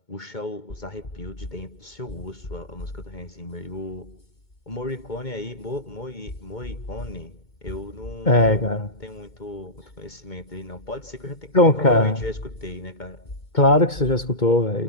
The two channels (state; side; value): late; right; 2.2 ms